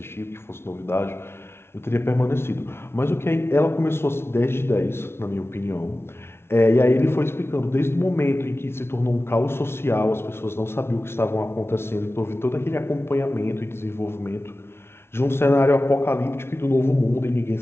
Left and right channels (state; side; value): late; right; 0.12 ms